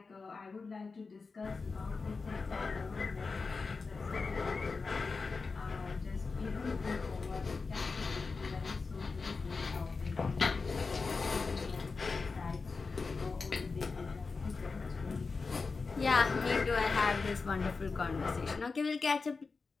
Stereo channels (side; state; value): right; quieter; 4.4 dB